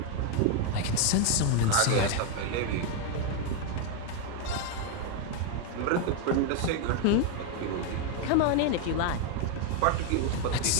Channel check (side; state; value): both; different; correlation 0.01